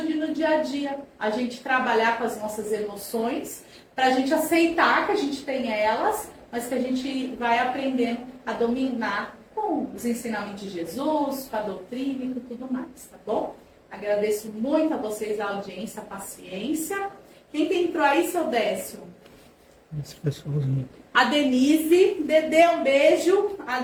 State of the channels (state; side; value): identical; both; correlation 1.00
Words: no dia a dia a gente trabalhar com as nossas emoções, para a gente aceitar que a gente tem elas, mas que a gente vai aprendendo a dominar com os ensinamentos de Jesus, com a doutrina e com tudo mais, tá bom? Agradeço muito a vocês a audiência, a paciência. Quem que entrou aí, seu Décio? As pessoas. A Denise, Dedê, um beijo. A